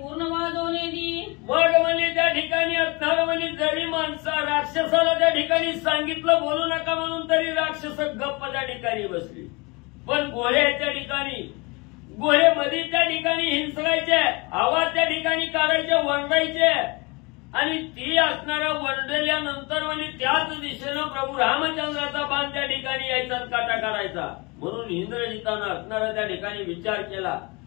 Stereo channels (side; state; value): right; quieter; 27.3 dB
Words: वाजवणे दी. मग म्हणजे त्या ठिकाणी असणार म्हणजे जरी माणसा राक्षसाला त्या ठिकाणी सांगितलं बोलू नका म्हणून तरी राक्षस गप्प त्या ठिकाणी बसली. पण घोड्याच्या ठिकाणी घोडे मध्ये त्या ठिकाणी हिंसकायचे, आवाज त्या ठिकाणी काढायचे, वरडायचे आणि ती असणाऱ्या वरडल्यानंतर म्हणजे त्याच दिशेनं प्रभू रामचंद्राचा बाण त्या ठिकाणी यायचा काटा काढायचा. म्हणून इंद्रजितानं असणारा त्या ठिकाणी विचार केला